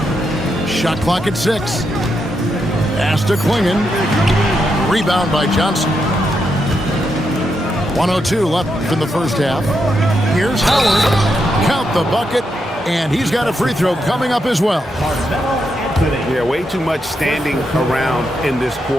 Shot clock at 6. Pass to Klingon. Rebound by Johnson. 1:02 left in the first half. Here's Howard. Count the bucket. And he's got a free throw coming up as well. Yeah, way too much standing around in this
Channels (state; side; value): normal; both; correlation 0.82